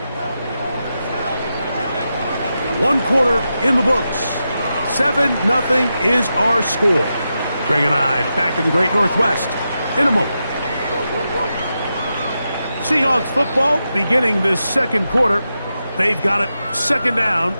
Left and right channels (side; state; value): both; inverted; correlation -0.88